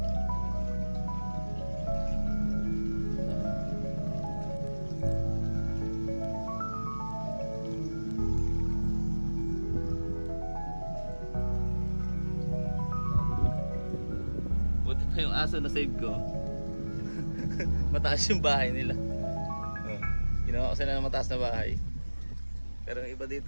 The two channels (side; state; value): both; inverted; correlation -1.00